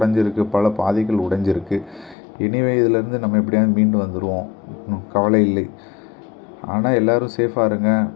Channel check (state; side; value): drops out; right; at 2.1 s